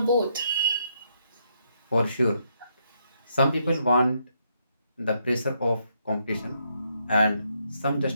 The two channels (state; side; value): inverted; both; correlation -0.76